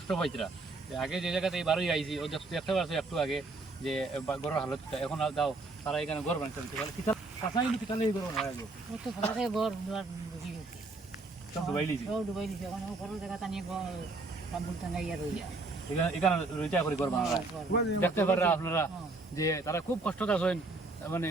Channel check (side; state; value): left; quieter; 3.3 dB